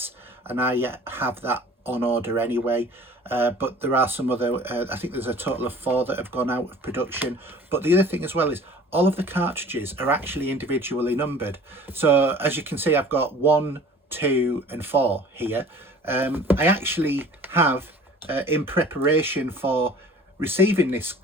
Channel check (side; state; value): both; normal; correlation 0.47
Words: and I have that on order anyway. But there are some other, I think there's a total of 4 that have gone out of production. But the other thing as well is all of the cartridges are actually individually numbered. So as you can see, I've got 1, 2 and 4 here. I actually have, in preparation for receiving this